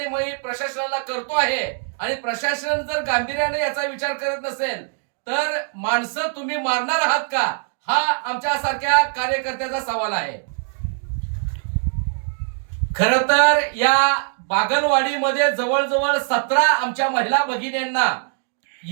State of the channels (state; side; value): silent; left; 64 dB below the other